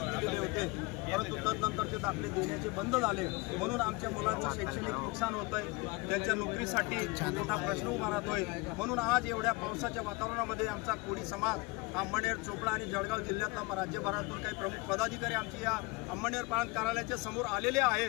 होते, परंतु तदनंतर ते दाखले देण्याचे बंद झाले। म्हणून आमच्या मुलांचं शैक्षणिक नुकसान होतंय, त्यांच्या नोकरीसाठी मोठा प्रश्न उभा राहतोय। म्हणून आज एवढ्या पावसाच्या वातावरणामध्ये आमचा कोळी समाज अमळनेर, चोपडा आणि जळगाव जिल्ह्यातला राज्यभरातून काही प्रमुख पदाधिकारी आमची या अमळनेर प्रांत कार्यालयाच्या समोर आलेले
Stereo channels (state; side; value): quieter; right; 25.2 dB